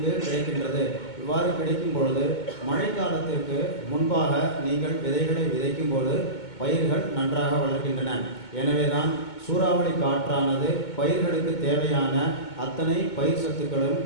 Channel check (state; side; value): late; right; 2.2 ms